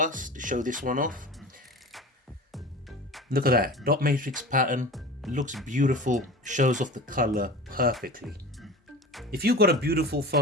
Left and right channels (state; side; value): normal; both; correlation 0.34